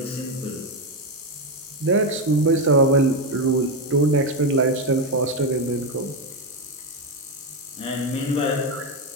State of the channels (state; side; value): normal; both; correlation 0.09